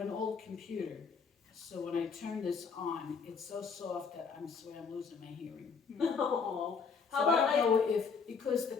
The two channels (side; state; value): right; quieter; 5.5 dB